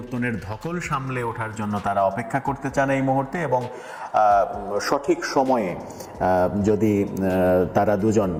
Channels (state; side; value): identical; both; correlation 1.00